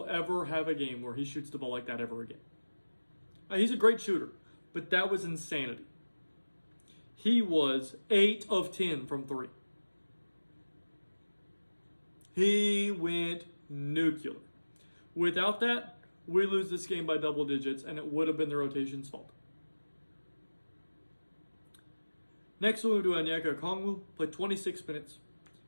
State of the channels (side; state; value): both; inverted; correlation -1.00